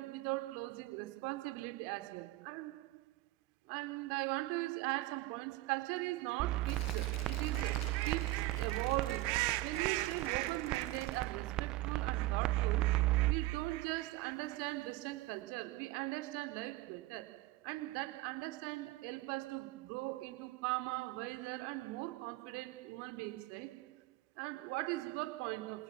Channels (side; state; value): left; quieter; 18.5 dB